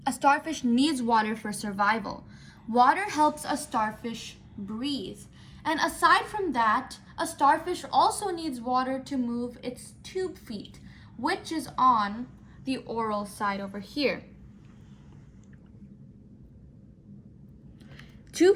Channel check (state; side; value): identical; both; correlation 1.00